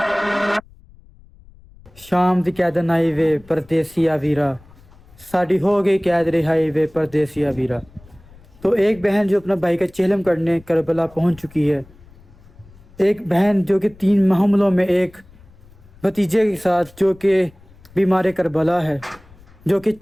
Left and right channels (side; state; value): left; noise; rumble, 25 dB below the sound